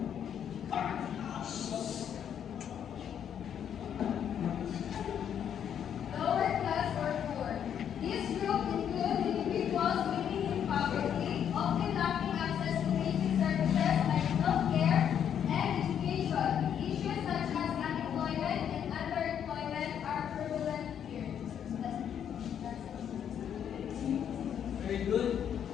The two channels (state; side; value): quieter; right; 8.9 dB